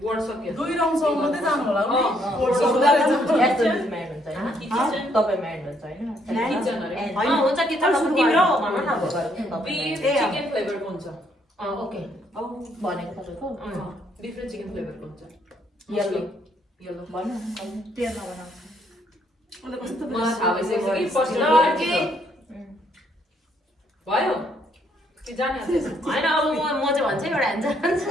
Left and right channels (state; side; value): normal; both; correlation 0.70